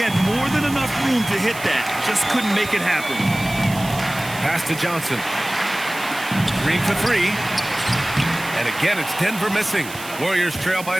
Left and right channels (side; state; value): right; noise; hiss, 14 dB below the sound